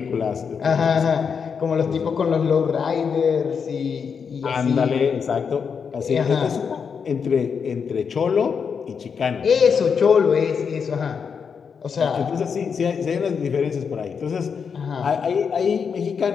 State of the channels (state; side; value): quieter; right; 6.3 dB